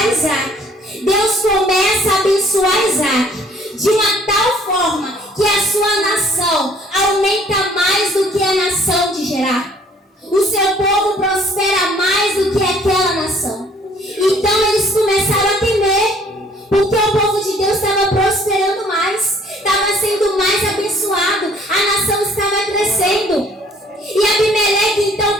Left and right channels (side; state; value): both; normal; correlation 0.58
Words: Isaac. Deus começa a abençoar Isaac de uma tal forma que a sua nação aumenta mais do que a nação de Gerar. O seu povo prospera mais do que aquela nação. Então eles começaram a temer, porque o povo de Deus estava prosperando mais, estava sendo mais abençoado, a nação estava crescendo. E Abimeleque então